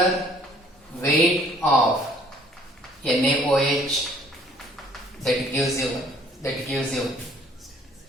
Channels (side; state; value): both; normal; correlation 0.58